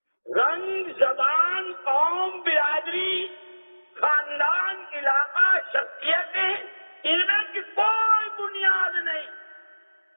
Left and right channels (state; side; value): inverted; both; correlation -1.00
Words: رنگ، زبان، قوم، برادری، خاندان، علاقہ، شخصیتیں، ان میں کی کوئی بنیاد نہیں،